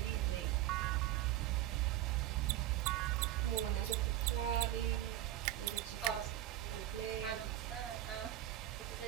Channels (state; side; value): quieter; left; 13.6 dB